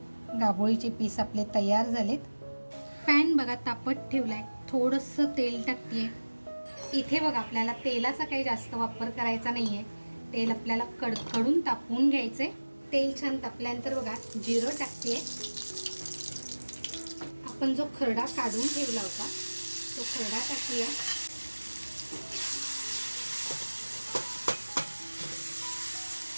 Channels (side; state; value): both; inverted; correlation -1.00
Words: गाभोळीचे पीस आपले तयार झालेत. पॅन बघा तापत ठेवलाय. थोडंसं तेल टाकते इथे बघा आपल्याला तेलाचा काही जास्त वापर करायचा नाही आहे. तेल आपल्याला कडकडून तापवून घ्यायचं आहे. तेल छान तापल्यानंतर बघा जिरं टाकते. आपण जो खरडा काढून ठेवला होता तो खरडा टाकूया.